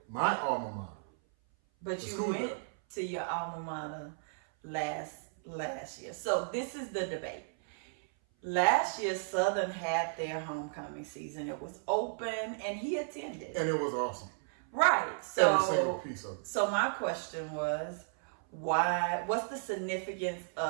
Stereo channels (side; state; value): left; silent; 55 dB below the other